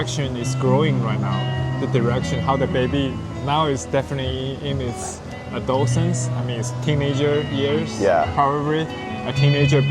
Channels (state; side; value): identical; both; correlation 1.00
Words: it's growing right now? The direction, how the baby now is definitely in its adolescence. I mean, it's teenager years. Yeah. Probably a teenager